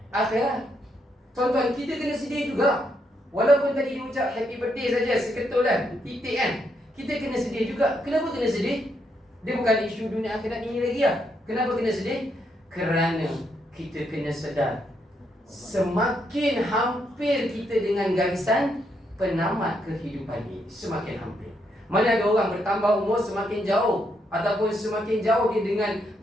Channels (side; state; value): both; normal; correlation 0.77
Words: akhirat. Tuan-tuan, kita kena sedih juga. Walaupun tadi dia ucap happy birthday saja, seketul kan, titik kan, kita kena sedih juga. Kenapa kena sedih? Dia bukan isu dunia akhirat ini lagi lah. Kenapa kena sedih? Kerana kita kena sedar, semakin hampir kita dengan garisan penamat kehidupan ini, semakin hampir. Mana ada orang bertambah umur semakin jauh, ataupun semakin jauh dia dengan